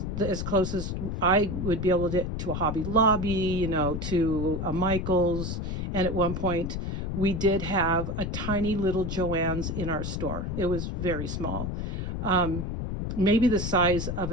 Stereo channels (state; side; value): noise; left; rumble, 3 dB below the sound